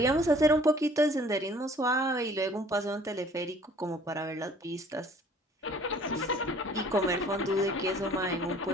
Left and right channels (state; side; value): normal; both; correlation 0.54